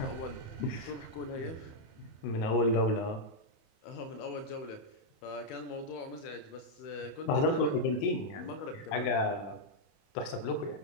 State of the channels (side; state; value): right; late; 28 ms